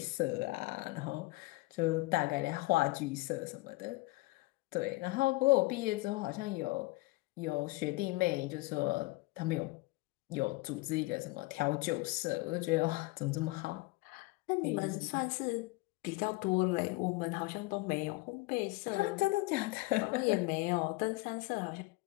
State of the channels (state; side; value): quieter; right; 22.4 dB